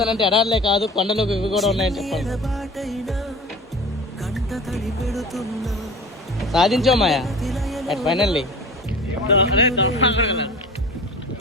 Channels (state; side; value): normal; both; correlation 0.38